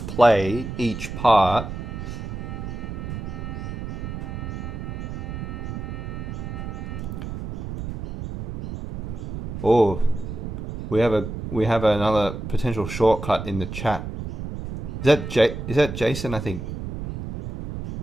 each part Oh, we have another potential shortcut in the chat. Is that Jason? I think.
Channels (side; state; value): right; noise; rumble, 6 dB below the sound